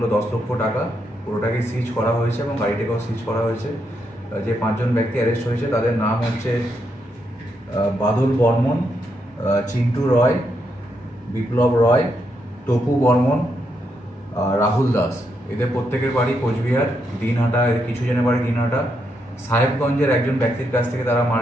10 লক্ষ টাকা। পুরোটাকে সিজ করা হয়েছে এবং গাড়িটাকেও সিজ করা হয়েছে। যে 5 জন ব্যক্তি অ্যারেস্ট হয়েছে তাদের নাম হচ্ছে বাদল বর্মন, চিন্টু রয়, বিপ্লব রয়, টপু বর্মন, রাহুল দাস। এদের প্রত্যেকের বাড়ি কোচবিহার, দিনহাটা। এদের কিছু জনের বাড়ি দিনহাটা। সাহেবগঞ্জের একজন ব্যক্তির কাছ থেকে তারা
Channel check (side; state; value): both; normal; correlation 0.80